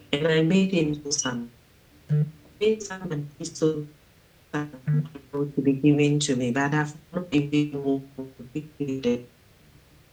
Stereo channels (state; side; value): identical; both; correlation 1.00